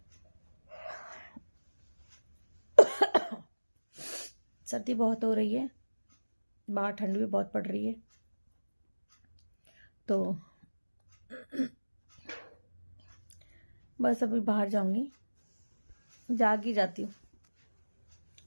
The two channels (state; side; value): inverted; both; correlation -1.00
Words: सर्दी बहुत हो रही है, बाहर ठंड भी बहुत पड़ रही है, तो बस अभी बाहर जाऊंगी, जाग ही जाती हूँ।